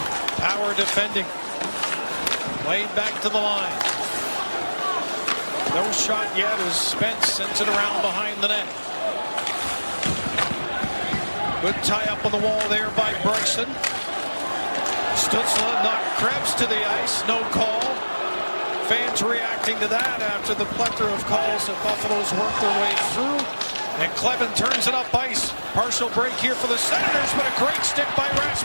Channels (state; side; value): inverted; both; correlation -1.00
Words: Power defending. Played back to the line. No shot yet as Spence sends it around behind the net. Good tie up on the wall there by Bryson. Stützle knocked Krebs to the ice. No call. Fans reacting to that after the plethora of calls that Buffalo's worked their way through. And Clevin turns it up ice. Partial break here for the Senators, but a great stick by